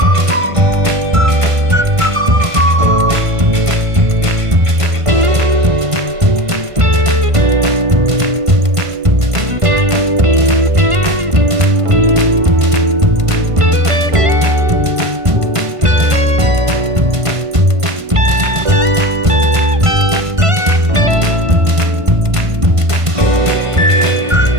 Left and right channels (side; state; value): left; late; 1.5 ms